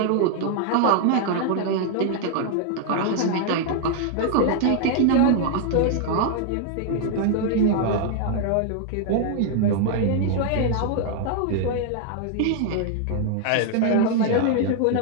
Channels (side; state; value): both; different; correlation 0.00